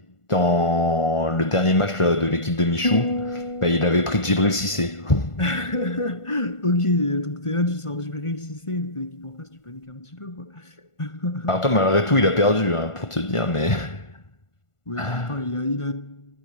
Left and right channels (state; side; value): late; right; 1.5 ms